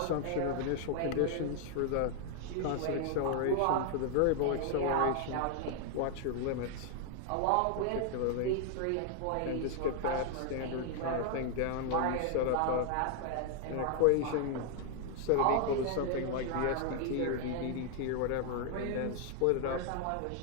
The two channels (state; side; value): different; both; correlation 0.00